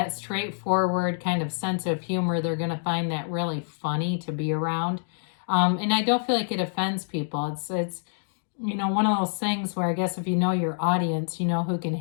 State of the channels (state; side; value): silent; right; digital silence